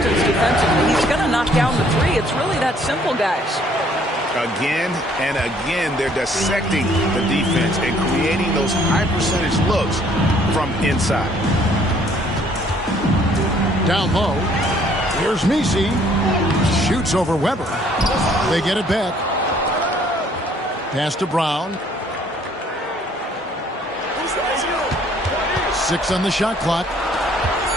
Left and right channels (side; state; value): both; normal; correlation 0.61